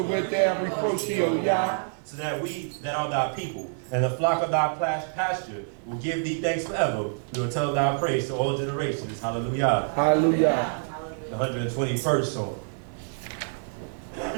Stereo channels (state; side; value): silent; left; digital silence